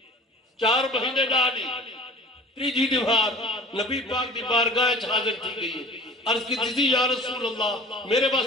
4 مہینے ڈالی، تیجی دیوار نبی پاک دی بارگاہ حاضر تھی گئی ہے۔ عرض کی تھی یا رسول اللہ میرے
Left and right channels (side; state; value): both; normal; correlation 0.44